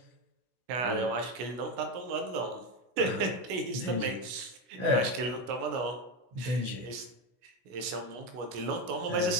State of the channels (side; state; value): left; late; 16 ms